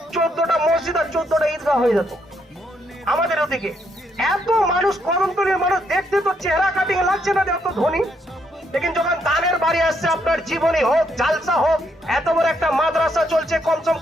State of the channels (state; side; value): normal; both; correlation 0.75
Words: 14টা মসজিদ আর 14টা ঈদগাহ হয়ে যেত আমাদের ওদিকে। এত মানুষ, কদমতলীর মানুষ দেখতে তো চেহারা কাটিং লাগছে না এত ধনী, लेकिन যখন দানের বাড়ি আসছে, আপনার জীবনী হোক, জালসা হোক, এত বড় একটা মাদ্রাসা চলছে, কমসম